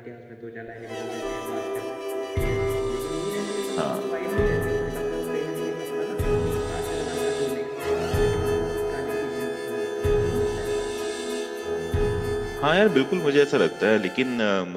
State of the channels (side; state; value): both; identical; correlation 1.00